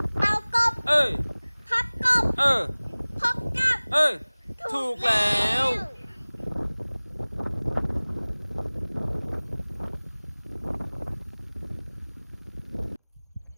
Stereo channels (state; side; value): inverted; both; correlation -1.00